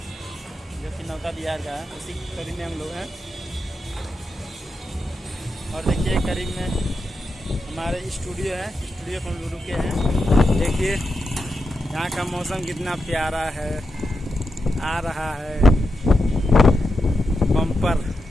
जो कि नौका बिहार का है। उसी करीब में हम लोग हैं। और देखिए करीब में हमारे स्टूडियो है, स्टूडियो पर हम लोग रुके हैं। देखिए यहाँ का मौसम कितना प्यारा है। आ रहा है बम्पर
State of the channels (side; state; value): both; normal; correlation 0.87